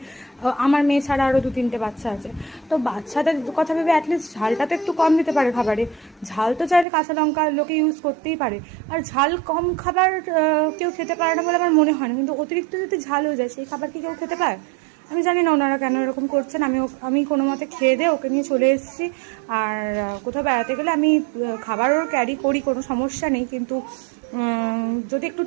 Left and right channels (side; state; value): left; drops out; at 6.9 s